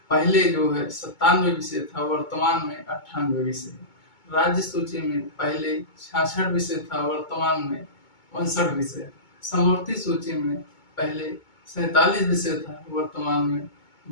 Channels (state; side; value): late; right; 2.2 ms